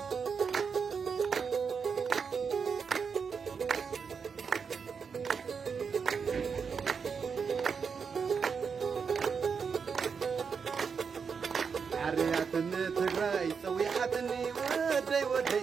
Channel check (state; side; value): quieter; left; 5.9 dB